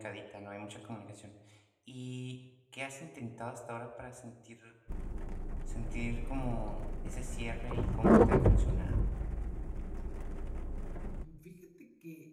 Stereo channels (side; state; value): both; identical; correlation 1.00